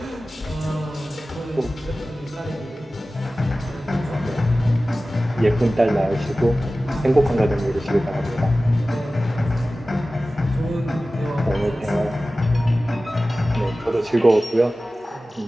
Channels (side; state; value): both; normal; correlation 0.96